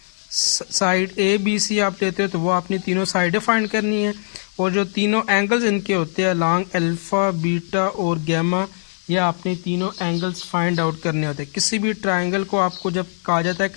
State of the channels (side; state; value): right; silent; digital silence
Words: साइड ABC आप लेते हो तो वो आपने तीनों साइडें फाइंड करनी है, और जो तीनों एंगल्स इनके होते हैं लॉन्ग अल्फ़ा, बीटा और गैमा, या आपने तीनों एंगल्स फाइंड आउट करने होते हैं। किसी भी ट्राइंगल को आपको जब कहा जाता है